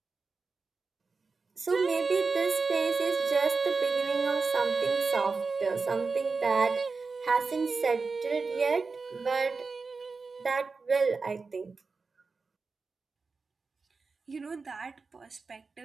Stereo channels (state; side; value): quieter; left; 4.4 dB